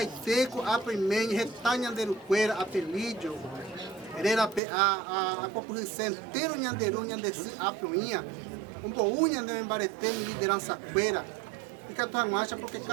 Apemen, Retá Nhanderuqueira, Apelídio, a população inteira Nhanderu, Nhandeçu, Apuinha, um boú Nhanderuqueira, liderança queira, e que a tua marcha porque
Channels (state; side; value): drops out; left; at 4.6 s